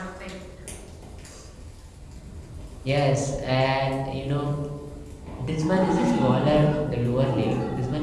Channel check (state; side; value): identical; both; correlation 1.00